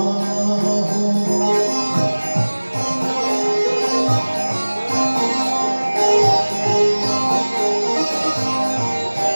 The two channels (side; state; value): both; inverted; correlation -1.00